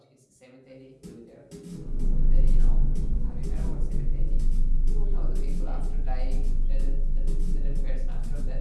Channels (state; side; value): identical; both; correlation 1.00